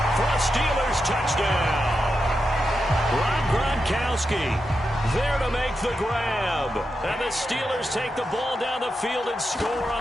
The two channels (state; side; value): normal; both; correlation 0.87